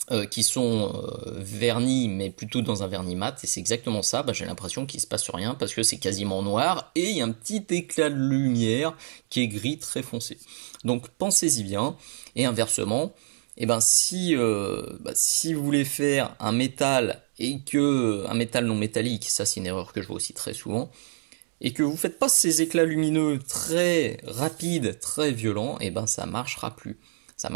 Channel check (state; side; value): silent; left; digital silence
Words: Qui sont vernis, mais plutôt dans un vernis mat, et c'est exactement ça. Bah, j'ai l'impression qu'il se passe rien parce que c'est quasiment noir et il y a un petit éclat de lumière qui est gris très foncé. Donc pensez-y bien. Et inversement, eh ben, si vous voulez faire un métal et que un métal non métallique, ça c'est une erreur que je vois aussi très souvent, et que vous faites pas ces éclats lumineux très rapides, très violents, eh ben ça marchera plus. Ça